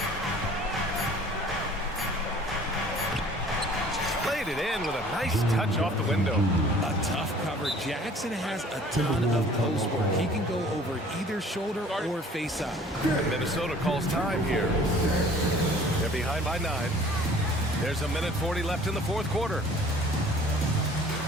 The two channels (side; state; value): both; normal; correlation 0.51